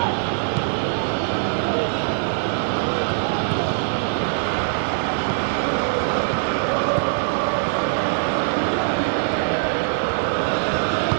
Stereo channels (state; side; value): silent; left; 64 dB below the other